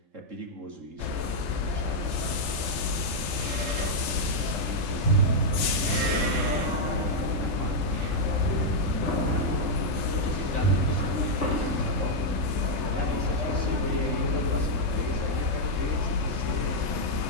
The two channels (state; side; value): late; left; 3.3 ms